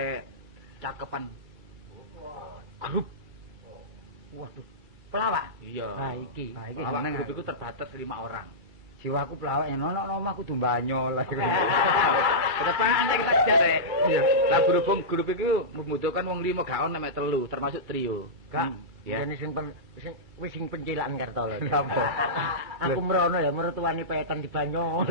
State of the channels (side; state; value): left; late; 2.3 ms